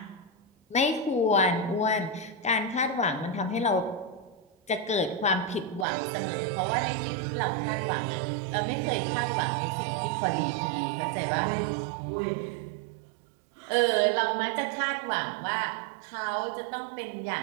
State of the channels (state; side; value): drops out; left; at 5.9 s